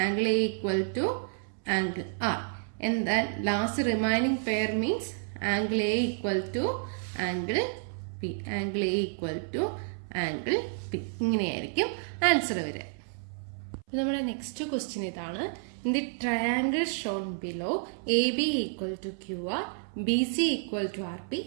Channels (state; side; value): silent; left; 58 dB below the other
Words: Angle A equal to angle R. And then last remaining pair means angle A equal to angle P. Angle A equal to angle P. ഇങ്ങനെയായിരിക്കും answer വരിക. നമ്മുടെ next question ഇതാണ്. In the triangle shown below, AB equal to QR, BC equal to RP,